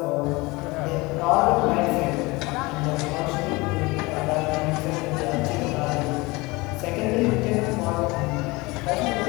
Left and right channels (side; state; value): right; quieter; 23.4 dB